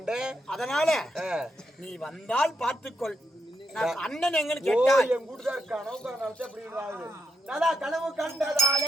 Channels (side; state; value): both; normal; correlation 0.81